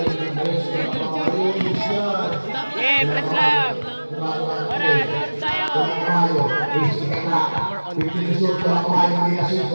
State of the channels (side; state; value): both; inverted; correlation -1.00